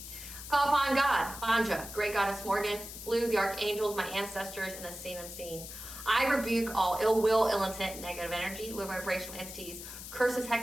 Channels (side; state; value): left; noise; hiss, 11 dB below the sound